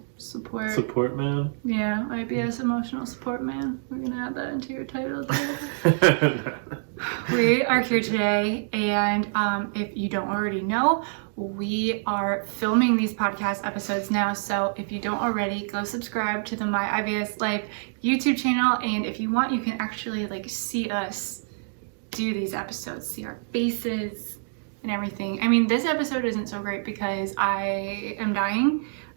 support. Support man. Yeah, IBS emotional support man. We're gonna add that into your title too. We are here today, and if you don't already know, we are filming these podcast episodes now. So if you don't already, go subscribe to the MyIBSLife YouTube channel, and if you want, you can actually see us do these episodes, see our faces and everything. I mean, this episode isn't so great because I am dying.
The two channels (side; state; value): left; silent; digital silence